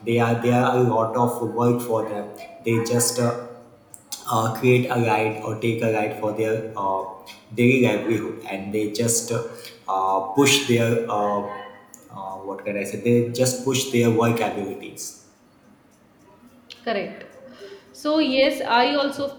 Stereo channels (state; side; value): identical; both; correlation 1.00